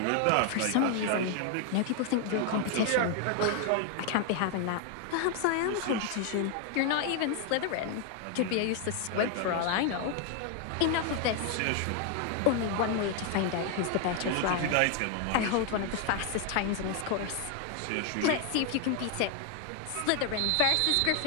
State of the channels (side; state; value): both; different; correlation 0.01